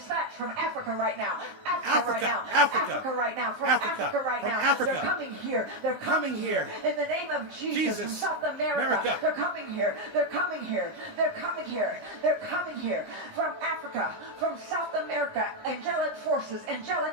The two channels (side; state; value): left; late; 20 ms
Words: from Africa right now. Africa right now. Africa right now. From Africa right now. Africa. They're coming here. They're coming here. In the name of Jesus. From South America. They're coming here. They're coming here. They're coming here. They're coming here. From Africa. From South America. Angelic forces,